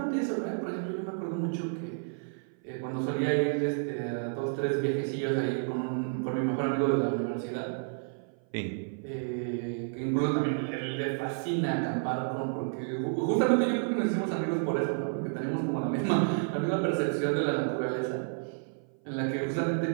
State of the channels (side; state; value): left; silent; 56 dB below the other